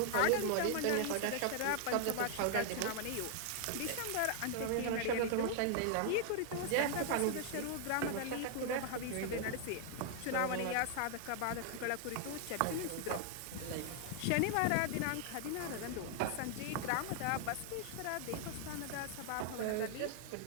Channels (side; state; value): both; different; correlation 0.00